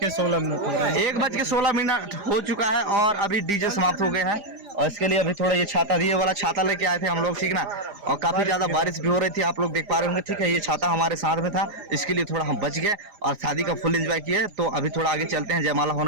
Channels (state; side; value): late; left; 4.9 ms